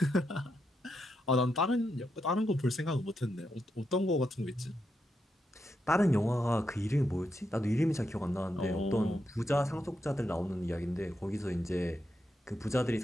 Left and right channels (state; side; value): normal; both; correlation 0.83